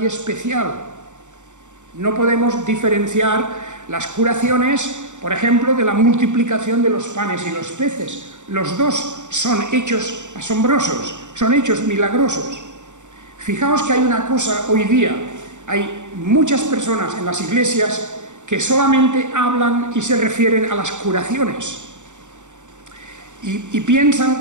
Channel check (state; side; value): late; left; 0.85 ms